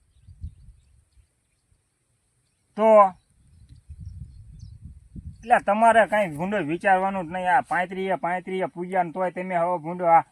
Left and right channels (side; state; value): both; identical; correlation 1.00